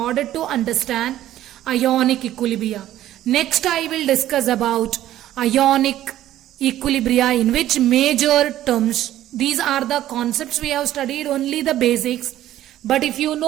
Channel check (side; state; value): left; quieter; 13.2 dB